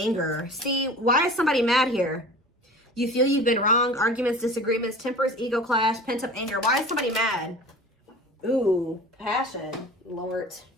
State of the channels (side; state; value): both; normal; correlation 0.40